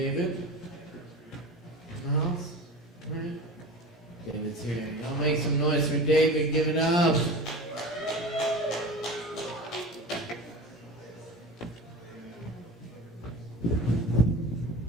in the house, right? David's here. Y'all make some noise for David. Give it up.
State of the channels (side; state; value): both; normal; correlation 0.32